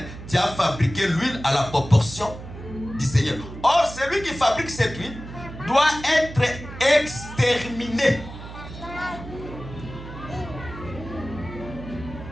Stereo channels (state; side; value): noise; right; hum, 12 dB below the sound